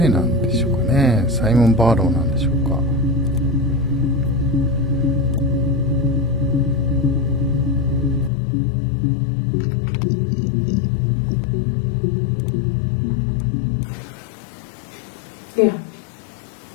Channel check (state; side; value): drops out; right; at 8.3 s